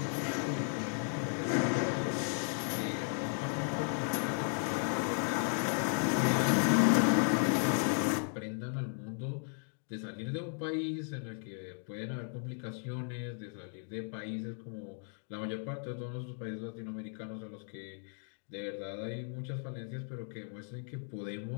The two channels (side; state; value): right; silent; 54 dB below the other